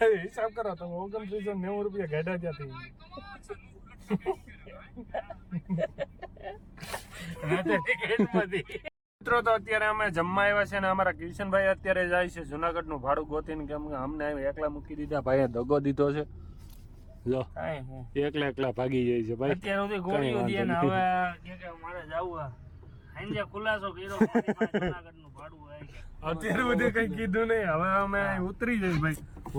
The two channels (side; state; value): both; identical; correlation 1.00